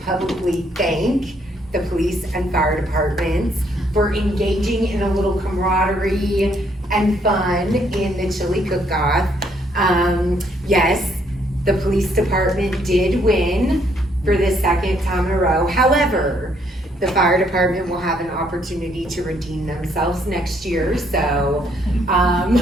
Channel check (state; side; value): normal; both; correlation 0.69